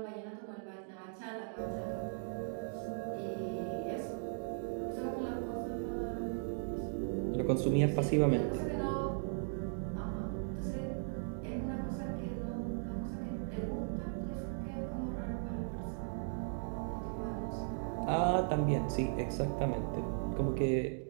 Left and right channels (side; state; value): left; silent; digital silence